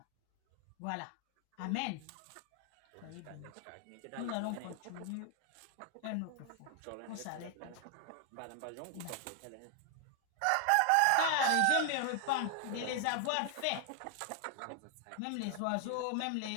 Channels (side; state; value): both; different; correlation 0.00